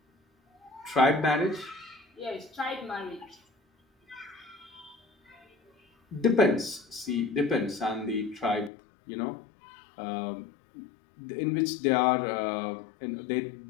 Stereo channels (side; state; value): right; drops out; at 8.7 s